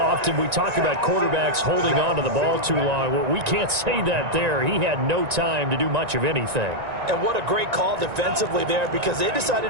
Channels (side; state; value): left; late; 1.9 ms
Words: we talk about quarterbacks holding on to the ball too long. Well, we can't say that there. He had no time to do much of anything. And what a great call defensively there because they